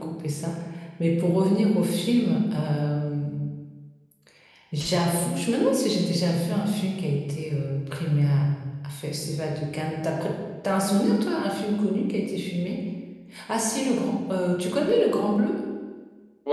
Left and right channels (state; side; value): identical; both; correlation 1.00